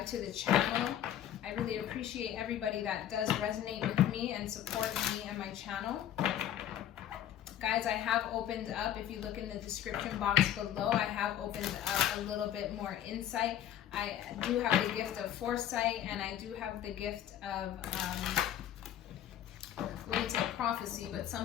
to the channel. I really appreciate everybody that does resonate with me and support me and my channel. Guys, I have opened up, if you look in the description box below, I have opened up a little bit more insight. I do have the gift of foresight, and I do have the gift of, I wouldn't say prophecy, but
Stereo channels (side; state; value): right; quieter; 10.9 dB